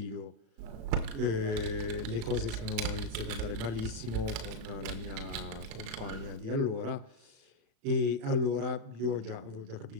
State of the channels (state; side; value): late; left; 36 ms